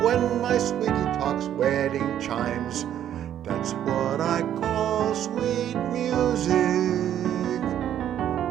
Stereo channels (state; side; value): quieter; left; 10.6 dB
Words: when my sweetie talks wedding chimes, that's what I call sweet music.